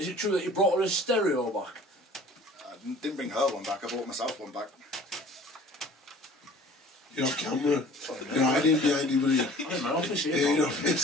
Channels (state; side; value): normal; both; correlation 0.48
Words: it true that you brought her a stereo back? I didn't bring her one back, I brought myself one back. You're off camera. You're hiding behind you, buddy. I'm in my office here. Yeah, in your